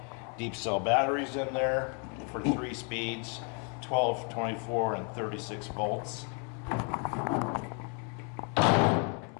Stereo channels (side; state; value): right; quieter; 37.4 dB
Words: deep cell batteries in there for 3 speeds. 12, 24, and 36 volts.